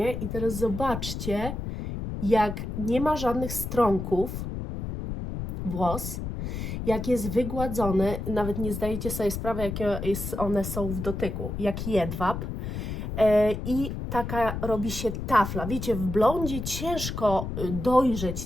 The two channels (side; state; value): left; noise; rumble, 5 dB below the sound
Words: i teraz zobaczcie, jak nie ma żadnych strąków włos, jak jest wygładzony, nawet nie zdajecie sobie sprawy, jakie one są w dotyku, jak jedwab. I taka robi się tafla. Wiecie, w blondzie ciężko dojrzeć